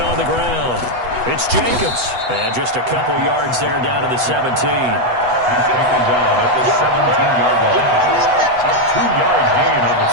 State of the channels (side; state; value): left; late; 8.1 ms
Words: on the ground. It's Jacobs. And just a couple yards there down to the 17. He's taken down at the 17-yard line. A 2-yard gain on the